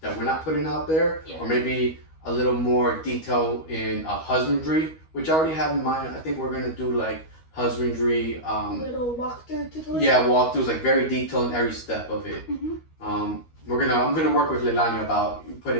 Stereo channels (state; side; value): late; right; 13 ms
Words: that we're not putting out there, or maybe a little more detail in husbandry, which I already have in mind. I think we're gonna do like husbandry. Little walkthrough tutorial. Yeah, walkthroughs, like very detailed in every step of it. I'm gonna work with Leilani about